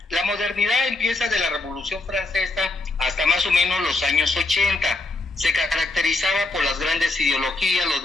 La modernidad empieza de la Revolución Francesa hasta más o menos los años 80. Se caracterizaba por las grandes ideologías, los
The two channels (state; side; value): quieter; right; 3.1 dB